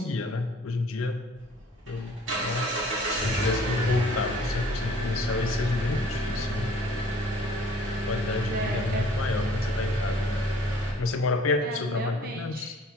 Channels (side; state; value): both; normal; correlation 0.53